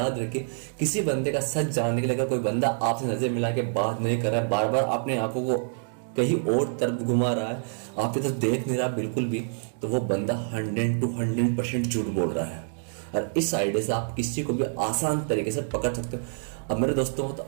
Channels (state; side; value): silent; left; digital silence